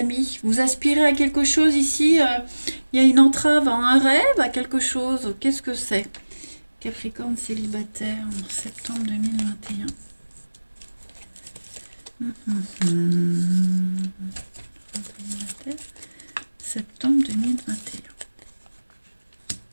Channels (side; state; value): both; inverted; correlation -1.00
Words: vous aspirez à quelque chose ici, il y a une entrave à un rêve, à quelque chose, qu'est-ce que c'est? Capricorne célibataire en septembre 2021. Septembre 2021.